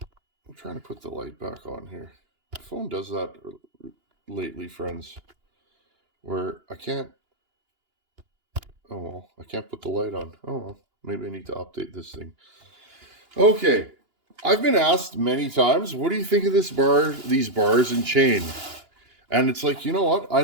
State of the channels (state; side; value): late; left; 2.9 ms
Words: trying to put the light back on here. The phone does that lately, friends, where I can't, oh well, I can't put the light on. Oh well, maybe I need to update this thing. Okay, I've been asked many times, what do you think of this bar, these bars and chain? And it's like, you know what? I